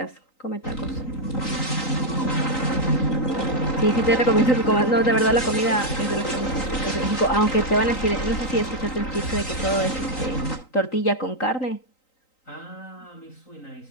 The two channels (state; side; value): late; right; 3.9 ms